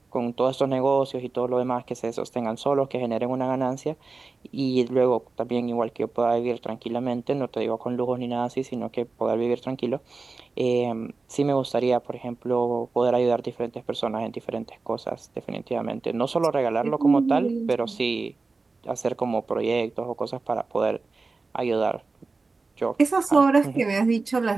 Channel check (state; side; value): quieter; left; 3.9 dB